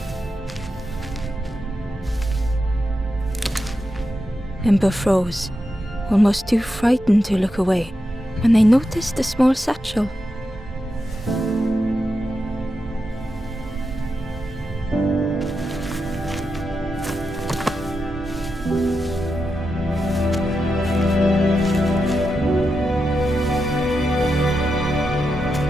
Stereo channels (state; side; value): normal; both; correlation 0.87